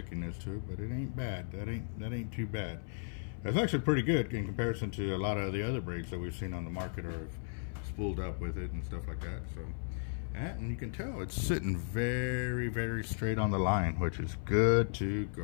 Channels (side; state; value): right; silent; 54 dB below the other